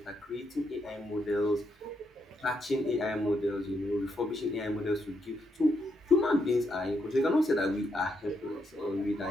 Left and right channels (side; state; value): both; normal; correlation 0.79